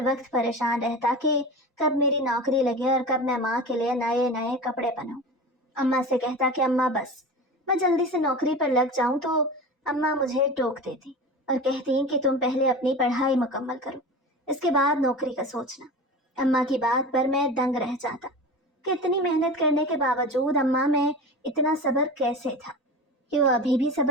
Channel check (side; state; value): both; normal; correlation 0.31